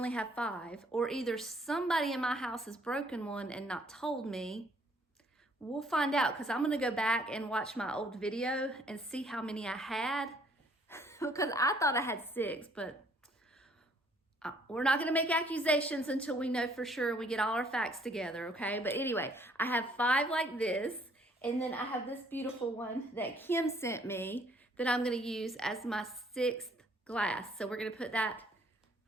have 5, or either somebody in my house has broken one and not told me. We'll find out, because I'm gonna go back and watch my old video and see how many I had, because I thought I had 6, but we're not gonna make accusations until we know for sure, we get all our facts together, okay? But anyway, I have 5 like this, and then I have this beautiful one that Kim sent me that I'm gonna use as my 6th glass. So we're gonna put that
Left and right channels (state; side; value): normal; both; correlation 0.62